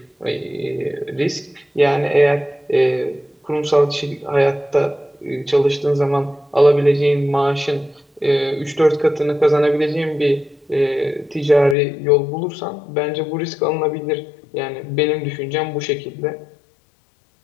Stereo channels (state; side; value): drops out; right; at 11.8 s